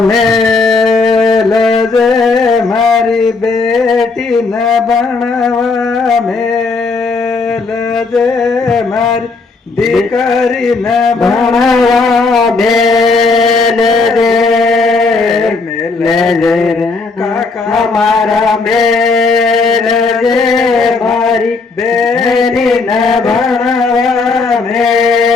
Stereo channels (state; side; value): quieter; right; 4.0 dB